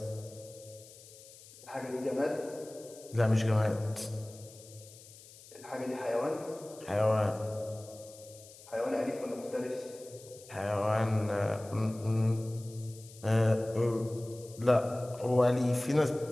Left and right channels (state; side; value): noise; left; hiss, 20 dB below the sound